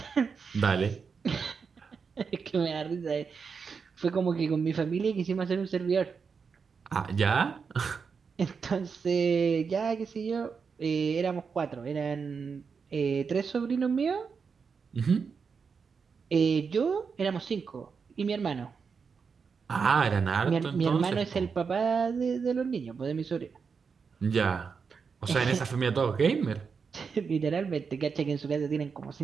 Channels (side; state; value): left; quieter; 5.7 dB